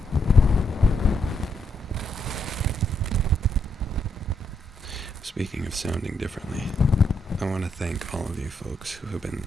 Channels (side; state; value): both; normal; correlation 0.77